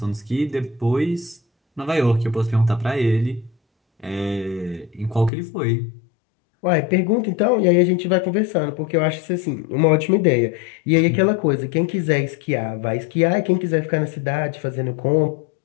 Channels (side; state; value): right; drops out; at 5.3 s